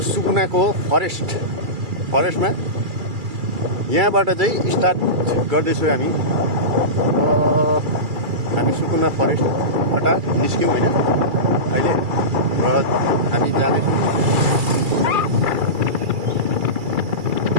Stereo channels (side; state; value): left; late; 2.3 ms